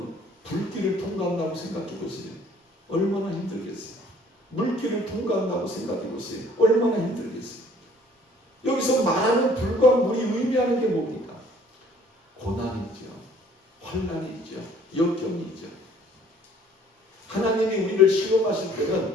불길을 통과한다고 생각해 보세요. 얼마나 힘들겠어요? 물길을 통과한다고 생각해 보세요. 얼마나 힘들겠어요? 여기서 말하는 불과 물이 의미하는 게 뭡니까? 고난이죠. 환난이죠. 역경이죠. 하나님이 우리를 시험하실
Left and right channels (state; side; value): normal; both; correlation 0.56